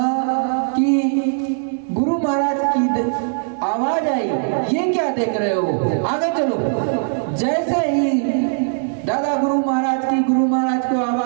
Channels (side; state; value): left; silent; 66 dB below the other